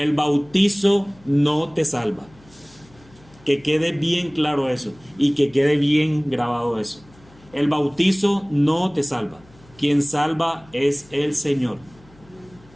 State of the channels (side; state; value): left; noise; hum, 27 dB below the sound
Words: bautizo no te salva. Que quede bien claro eso y que quede bien grabado eso. El bautizo no te salva. Quien salva es el Señor.